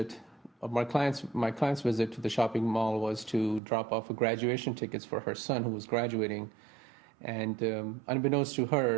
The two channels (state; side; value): drops out; left; at 3.6 s